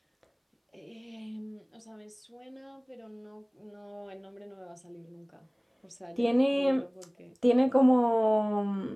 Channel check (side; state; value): both; identical; correlation 1.00